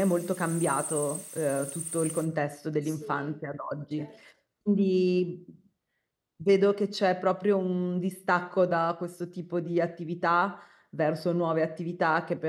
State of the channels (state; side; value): identical; both; correlation 1.00